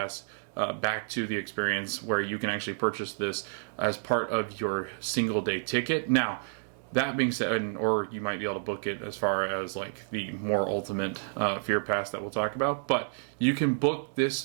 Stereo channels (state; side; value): silent; left; digital silence